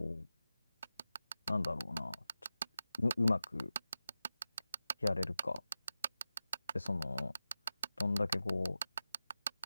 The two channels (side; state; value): both; inverted; correlation -0.93